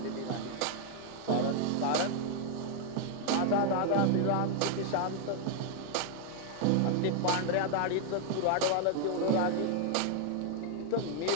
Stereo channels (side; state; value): both; different; correlation 0.00